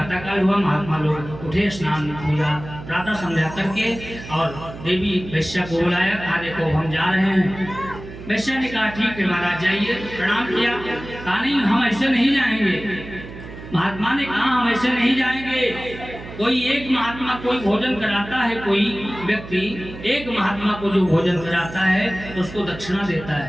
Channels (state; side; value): noise; right; hum, 13 dB below the sound